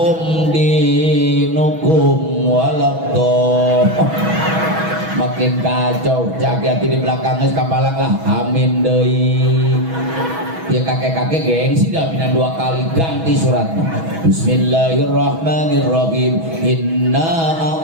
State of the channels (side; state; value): left; late; 6.2 ms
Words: dinukum walabdo makin kacau. Jaki-jaki di belakang geus kapalang lah. Amin deui. Ya kakek-kakek gengsi dah minan 2 kali ganti suratnya. Bismillahirrahmanirrahim. Inna